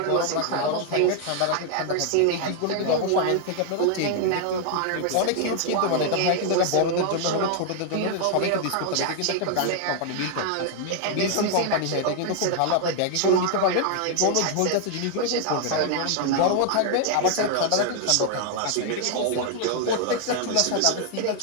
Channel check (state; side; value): different; both; correlation 0.00